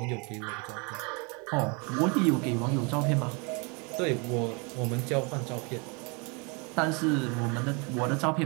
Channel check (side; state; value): left; quieter; 31.9 dB